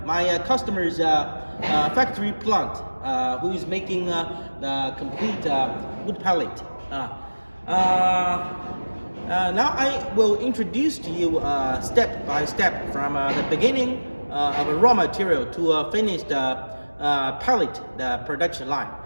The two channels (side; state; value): both; inverted; correlation -1.00